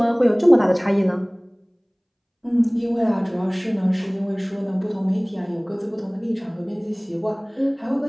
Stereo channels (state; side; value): identical; both; correlation 1.00